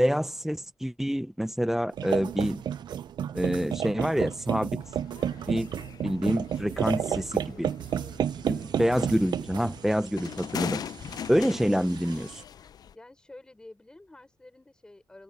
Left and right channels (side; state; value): both; normal; correlation 0.89